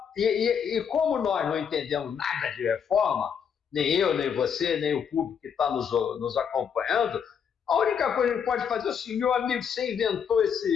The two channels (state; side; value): quieter; right; 7.4 dB